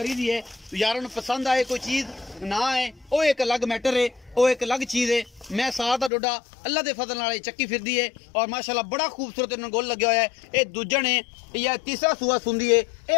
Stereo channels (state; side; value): drops out; right; at 6.1 s